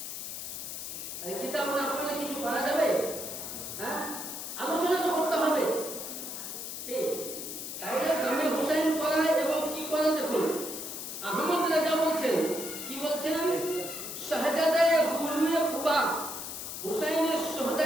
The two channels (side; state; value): left; noise; hiss, 7 dB below the sound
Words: আরে কিতাব না পড়লে কিছু করা যাবে? হ্যাঁ, আলোচনা তো করতে হবে। তাইলে জামে হুসাইন করা এবং কি করা দেখুন। আহমদ রাজা বলছেন, কি বলছেন? শাহজাদায়ে গুলুয়ে কুবা, হুসাইনের